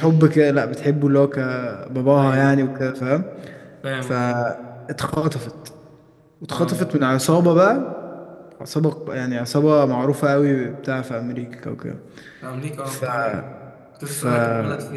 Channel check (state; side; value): identical; both; correlation 1.00